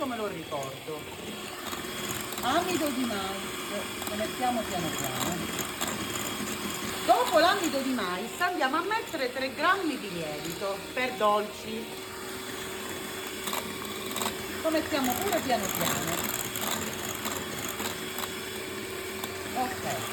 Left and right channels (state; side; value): identical; both; correlation 1.00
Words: me lo ricordo. Amido di mais, lo mettiamo piano piano. Dopo l'amido di mais andiamo a mettere 3 grammi di lievito per dolci. Lo mettiamo pure piano piano.